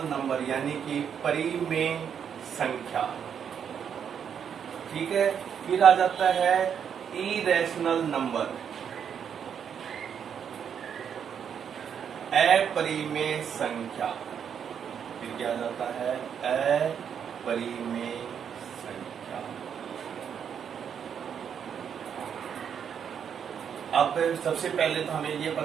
नंबर यानी कि परिमेय संख्या। ठीक है। फिर आ जाता है इरेशनल नंबर, अपरिमेय संख्या। फिर क्या आ जाता है? अपरिमेय संख्या। अब सबसे पहले तो हमें ये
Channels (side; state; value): left; quieter; 7.9 dB